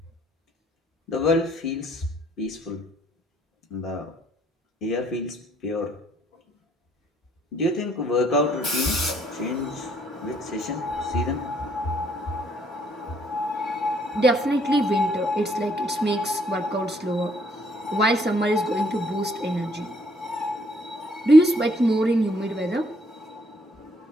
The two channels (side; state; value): both; normal; correlation 0.67